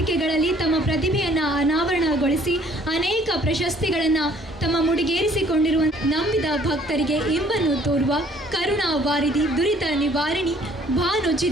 ತಮ್ಮ ಪ್ರತಿಭೆಯನ್ನು ಅನಾವರಣಗೊಳಿಸಿ ಅನೇಕ ಪ್ರಶಸ್ತಿಗಳನ್ನು ತಮ್ಮ ಮುಡಿಗೇರಿಸಿಕೊಂಡಿರುವ ನಂಬಿದ ಭಕ್ತರಿಗೆ ಇಂಬನ್ನು ತೋರುವ ಕರುಣಾ ವಾರಿಧಿ, ದುರಿತ ನಿವಾರಿಣಿ, ಭಾನು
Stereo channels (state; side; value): normal; both; correlation 0.59